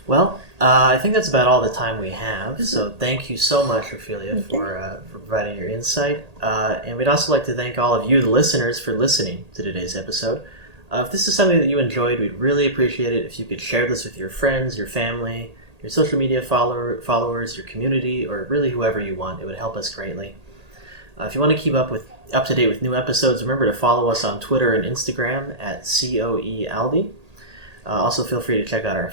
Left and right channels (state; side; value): late; left; 1.8 ms